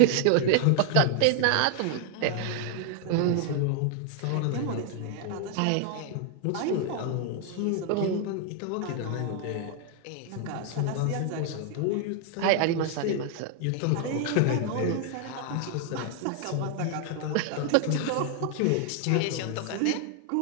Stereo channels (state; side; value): different; both; correlation 0.00